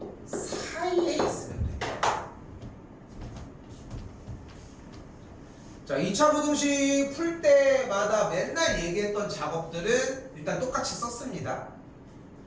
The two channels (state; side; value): identical; both; correlation 1.00